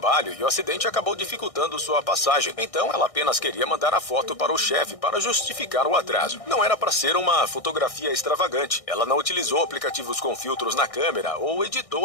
e o acidente acabou dificultando sua passagem. Então ela apenas queria mandar a foto para o chefe para justificar o atraso. Não era para ser uma fotografia extravagante. Ela não utilizou aplicativos com filtros na câmera ou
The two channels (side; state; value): right; late; 1.6 ms